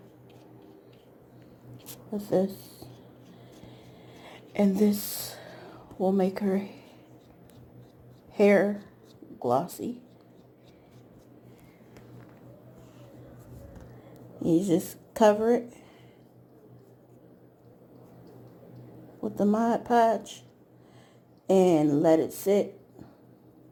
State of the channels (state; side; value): identical; both; correlation 1.00